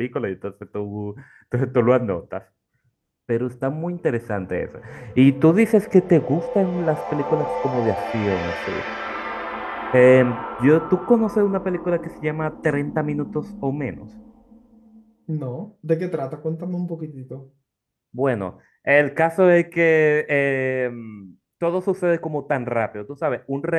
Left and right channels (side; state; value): both; identical; correlation 1.00